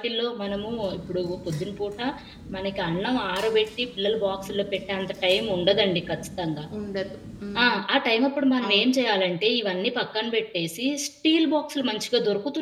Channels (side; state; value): both; identical; correlation 1.00